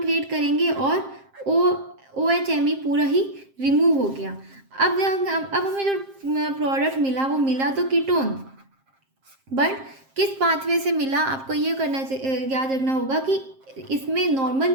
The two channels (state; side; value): late; left; 7.5 ms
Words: क्रिएट करेंगे और OHMe पूरा ही रिमूव हो गया। अब हमें जो प्रोडक्ट मिला वो मिला तो कीटोन, बट किस पाथवे से मिला, आपको ये याद रखना होगा कि इसमें